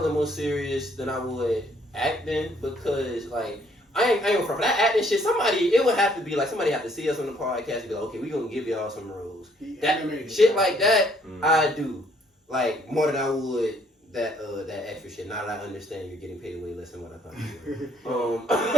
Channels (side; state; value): both; normal; correlation 0.65